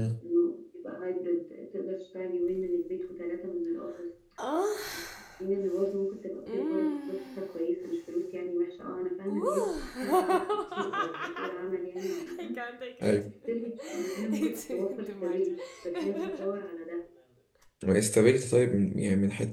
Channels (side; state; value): both; identical; correlation 1.00